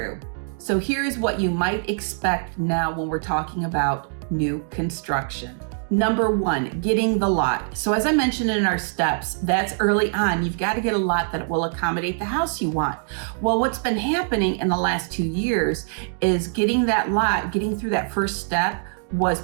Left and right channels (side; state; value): left; silent; digital silence